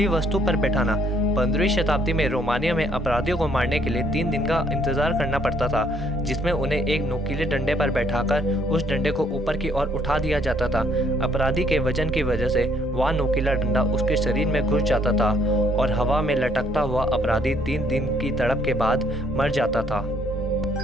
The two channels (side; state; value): both; normal; correlation 0.66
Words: वस्तु पर बैठाना। 15वीं शताब्दी में रोमानिया में अपराधियों को मारने के लिए 3 दिन का इंतजार करना पड़ता था जिसमें उन्हें एक नुकीले डंडे पर बैठाकर उस डंडे को ऊपर की ओर उठा दिया जाता था। अपराधी के वजन की वजह से वह नुकीला डंडा उसके शरीर में घुस जाता था और हवा में लटकता हुआ अपराधी 3 दिन की तड़प के बाद मर जाता था।